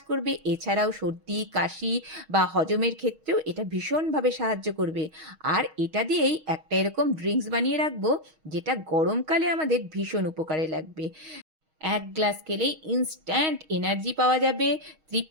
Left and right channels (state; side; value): late; left; 6.4 ms